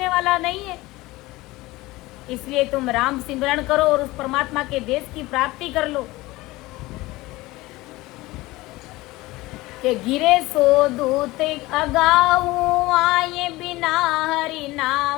वाला नहीं है। इसलिए तुम राम सिमरन करो और उस परमात्मा के देश की प्राप्ति कर लो। कि गिरे सो दूत अगाऊ आए, बिना हरि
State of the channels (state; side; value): quieter; right; 19.8 dB